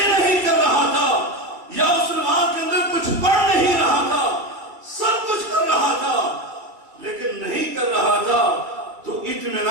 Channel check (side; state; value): left; late; 2.3 ms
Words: نہیں کر رہا تھا، یا اس نماز کے اندر کچھ پڑھ نہیں رہا تھا، سب کچھ کر رہا تھا، لیکن نہیں کر رہا تھا تو